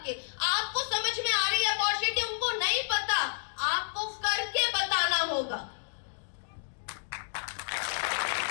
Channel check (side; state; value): right; silent; digital silence